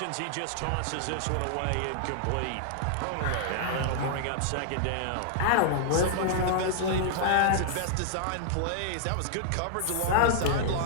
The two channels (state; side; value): different; both; correlation -0.01